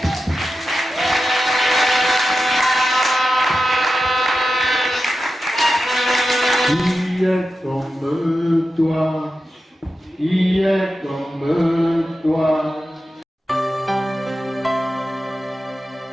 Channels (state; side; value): normal; both; correlation 0.91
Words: Qui est comme toi? Qui est comme toi?